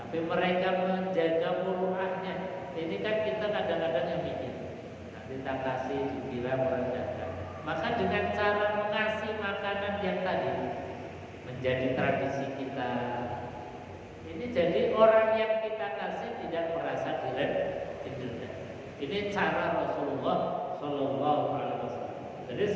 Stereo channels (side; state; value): both; identical; correlation 1.00